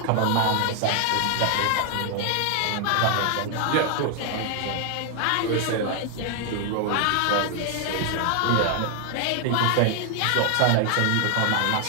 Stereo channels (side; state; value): both; different; correlation 0.00